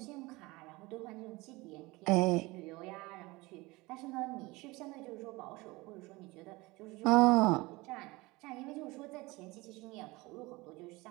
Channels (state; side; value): quieter; left; 22.3 dB